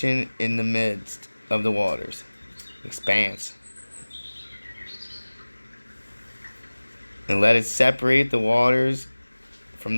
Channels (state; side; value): inverted; both; correlation -1.00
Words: in the midst of the waters." Expanse. And let it separate the waters from